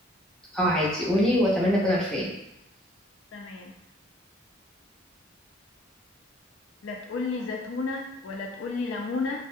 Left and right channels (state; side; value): normal; both; correlation 0.58